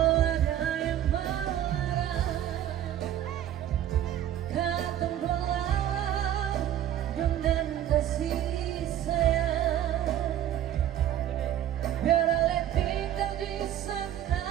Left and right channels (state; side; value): quieter; left; 11.5 dB